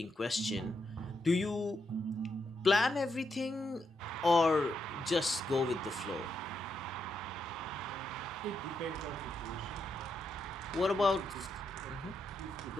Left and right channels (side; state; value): both; normal; correlation 0.81